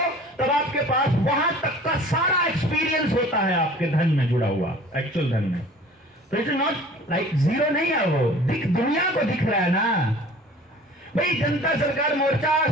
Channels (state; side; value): normal; both; correlation 0.46